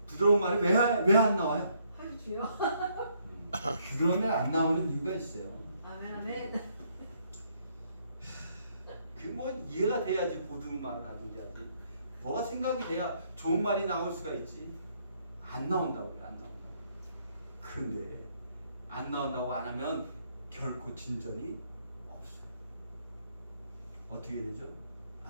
부드러운 말이 왜 안 나와요? 아유 주여. 부드러운 말 안 나오는 이유가 있어요. 아멘 아멘. 그 뭐 이해가 돼야지 보드는 말을 하든지 하지. 뭐가 생각이 돼야 좋은 말이 나올 수가 있지. 안 나온다고 그래. 안 나온다고. 근데 안 나온다고 안 하면 결코 진전이 없어요. 어떻게 되죠?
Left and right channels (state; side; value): inverted; both; correlation -0.70